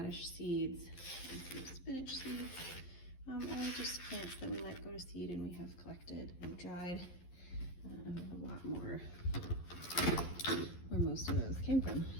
seeds, and some spinach seeds. All just plants that we let go to seed and we have collected and dried. And a lot more where most of those came from.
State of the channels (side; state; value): right; late; 11 ms